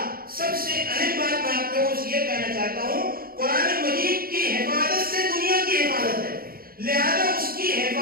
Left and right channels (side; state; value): left; late; 0.43 ms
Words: سب سے اہم بات میں آپ لوگوں سے یہ کہنا چاہتا ہوں، قرآن مجید کی حفاظت سے دنیا کی حفاظت ہے. لہذا اس کی